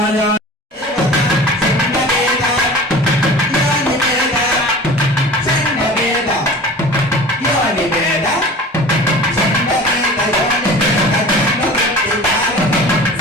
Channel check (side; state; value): both; normal; correlation 0.39